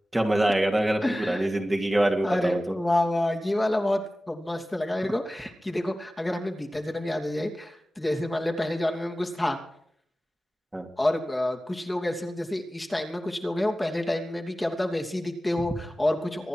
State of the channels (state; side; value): normal; both; correlation 0.96